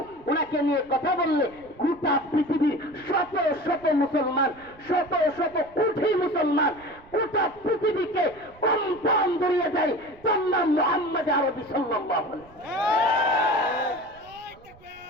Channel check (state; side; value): noise; right; rumble, 25 dB below the sound